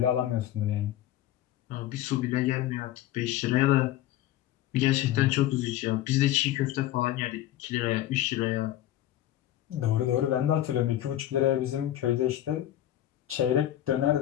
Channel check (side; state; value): right; quieter; 13.2 dB